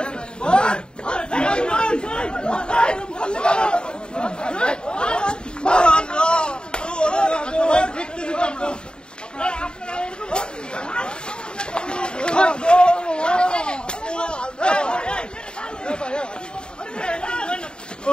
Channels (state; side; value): late; right; 0.049 ms